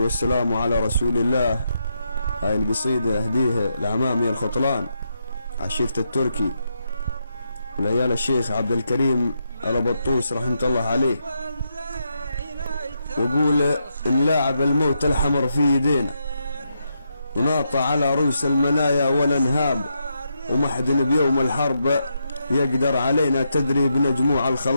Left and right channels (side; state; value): both; inverted; correlation -0.82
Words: على رسول الله. هاي القصيدة أهديها لعمامي الخطلان عشيرة التركي ولعيال الشيخ عبد الكريم البطوس رحمة الله عليه، وقول نلاعب الموت الحمر في يدينا وناطع على رؤوس المنايا والانهاب، ومحدن بيوم الحرب يقدر علينا تدري بنجموع